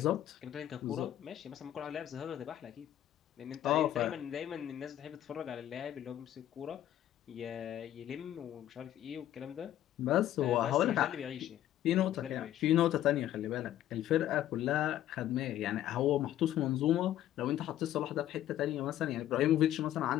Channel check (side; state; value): right; quieter; 12.3 dB